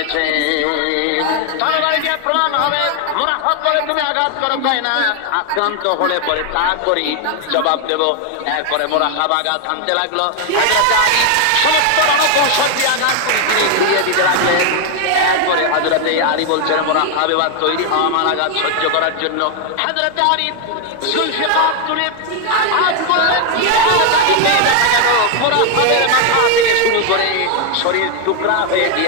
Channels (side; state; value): both; different; correlation 0.01